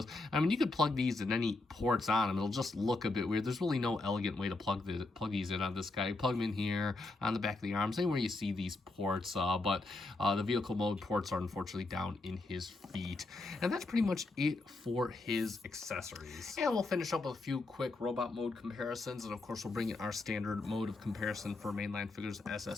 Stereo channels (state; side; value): quieter; right; 3.2 dB